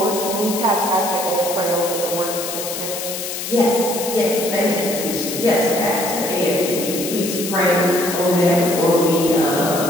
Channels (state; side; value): noise; left; hiss, 6 dB below the sound